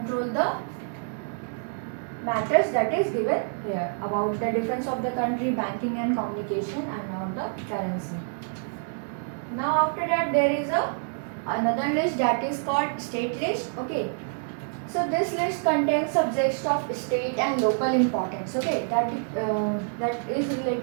the matters that is given here about the defense of the country, banking and communication, and now the currency. Now after that there is another list that is called state list. Okay, so this list contains subjects of state and local importance. Okay, that is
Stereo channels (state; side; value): silent; left; 56 dB below the other